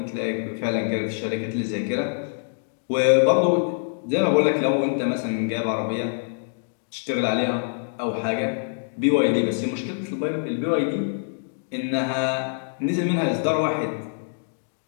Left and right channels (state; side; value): silent; right; digital silence